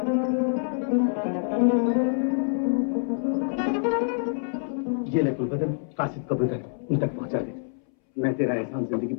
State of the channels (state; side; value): silent; right; 61 dB below the other